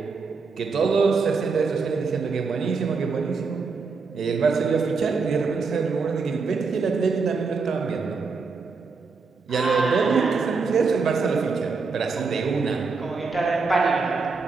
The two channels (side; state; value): left; quieter; 4.6 dB